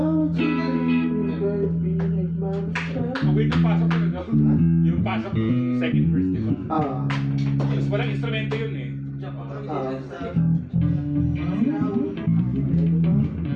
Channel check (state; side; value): identical; both; correlation 1.00